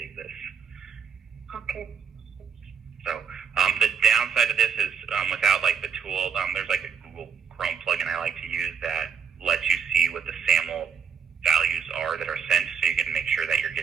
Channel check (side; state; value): left; quieter; 6.9 dB